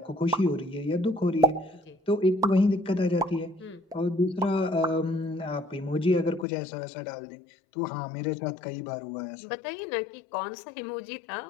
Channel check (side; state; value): right; drops out; at 6.5 s